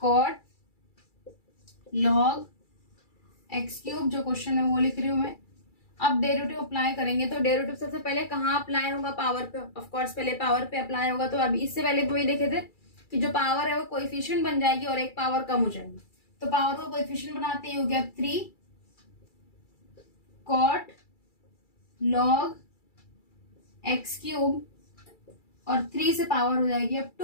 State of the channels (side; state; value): right; late; 2.3 ms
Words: cot log x³ जो क्वेश्चन है वो लिख रही हूं मैं। अब डेरिवेटिव अप्लाई करेंगे, तो डेरिवेटिव सबसे पहले कहाँ अप्लाई होगा, पावर पे, ऑफ कोर्स पहले पावर पे अप्लाई होगा। तो अभी इससे पहले वही लिखे थे कि जो पावर है वो कोएफिशिएंट बन जाएगी और एक पावर कम हो जाएगी। तो पावर को कोएफिशिएंट बनाते ही हो गया 3 cot log x³ और 3 से पावर हो जाएगी अब